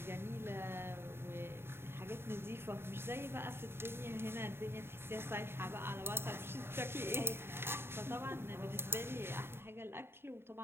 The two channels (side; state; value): left; late; 0.11 ms